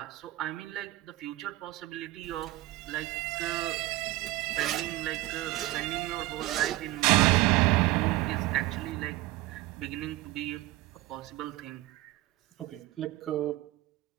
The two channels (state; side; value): quieter; left; 17.7 dB